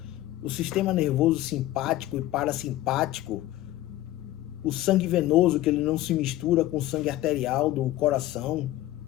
o sistema nervoso simpático e parasimpático, o sangue venoso, que ele não se mistura com o sangue arterial do coração,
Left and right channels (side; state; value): right; quieter; 15.2 dB